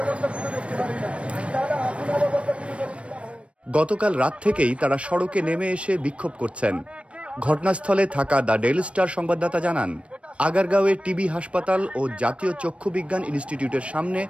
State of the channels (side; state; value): left; late; 0.061 ms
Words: গতকাল রাত থেকেই তারা সড়কে নেমে এসে বিক্ষোভ করছেন। ঘটনাস্থলে থাকা দ্য ডেইলি স্টার সংবাদদাতা জানান, আগারগাঁওয়ে টিবি হাসপাতাল ও জাতীয় চক্ষু বিজ্ঞান ইনস্টিটিউটের সামনে